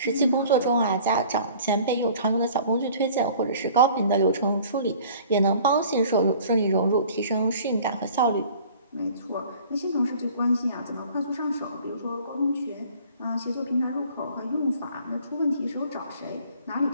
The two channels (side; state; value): both; inverted; correlation -0.50